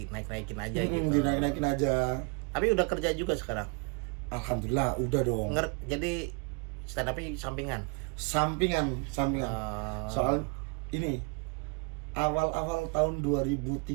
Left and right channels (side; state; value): left; quieter; 33.1 dB